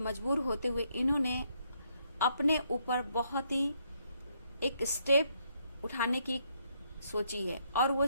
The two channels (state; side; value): inverted; both; correlation -0.73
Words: होते हुए इन्होंने अपने ऊपर बहुत ही एक स्टेप उठाने की सोची है, और वो